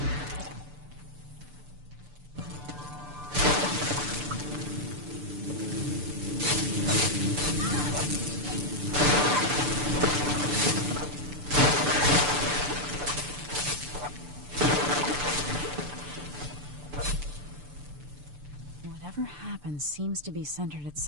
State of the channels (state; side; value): late; left; 6.8 ms